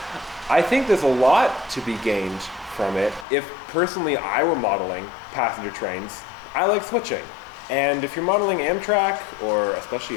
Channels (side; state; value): right; drops out; at 3.2 s